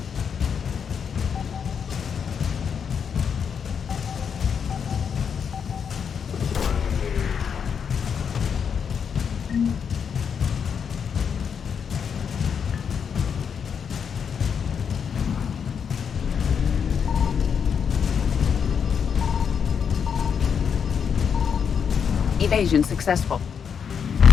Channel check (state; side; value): quieter; right; 7.0 dB